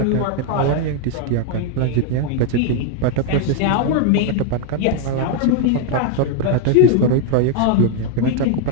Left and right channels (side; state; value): both; different; correlation 0.01